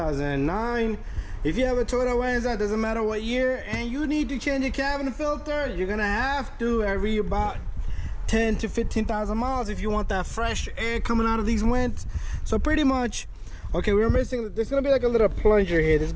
If you have a Toyota Venza, doesn't matter what year, and you need to change your cabin filter, you're gonna have to every about 10 to 15,000 miles if you want that fresh air coming out of these vents. So pretty much, okay, we're missing, there's gonna be like a little plunger here. This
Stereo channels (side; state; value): both; identical; correlation 1.00